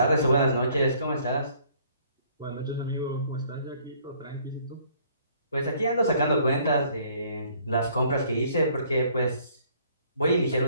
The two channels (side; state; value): both; inverted; correlation -0.61